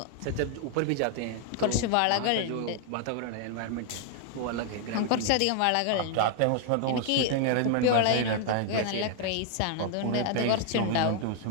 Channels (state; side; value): different; both; correlation 0.00